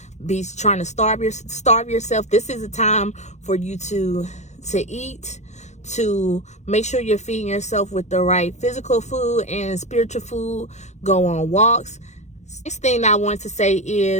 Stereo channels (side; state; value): right; late; 0.33 ms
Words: be trying to starve yourself. This is a time for you to eat, to make sure you're feeding yourself with the right physical food and spiritual food. Go on walks. Next thing I want to say